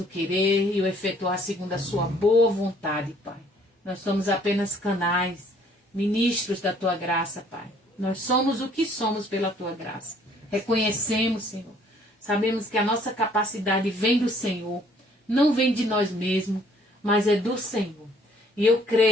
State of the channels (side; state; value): both; normal; correlation 0.60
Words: o querer e o efetuar segundo a sua boa vontade, Pai. Nós somos apenas canais, ministros da Tua graça, Pai. Nós somos o que somos pela Tua graça. Reconhecemos, Senhor. Sabemos que a nossa capacidade vem do Senhor, não vem de nós mesmos, mas é do Senhor. E eu